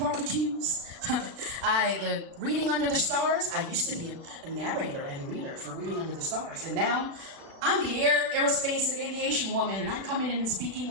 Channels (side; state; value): left; late; 36 ms